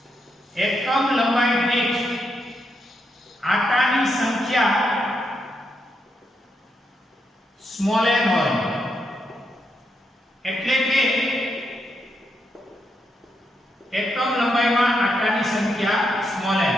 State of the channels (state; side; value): normal; both; correlation 0.81